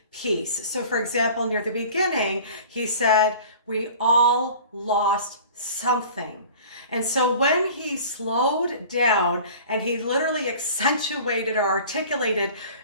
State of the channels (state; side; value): inverted; both; correlation -0.43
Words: piece. So, for example, near the beginning, he said, "We all lost something." And so when he slowed down and he literally accentuated or articulated